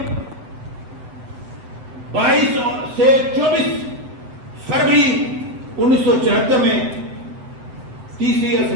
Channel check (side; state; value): left; late; 7.8 ms